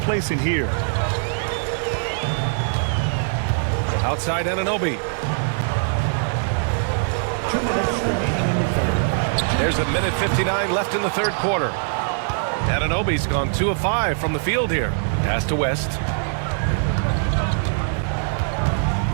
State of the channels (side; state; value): left; silent; 64 dB below the other